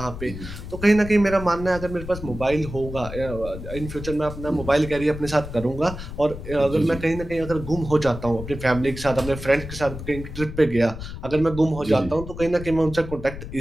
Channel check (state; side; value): noise; left; rumble, 10 dB below the sound